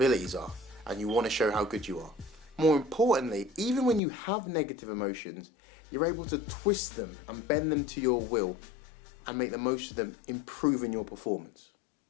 are and you want to show how good you are. More importantly, even when you have negative emotions, you're able to twist them and bend them to your will and make the most of them, improving your performance.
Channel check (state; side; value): drops out; right; at 4.0 s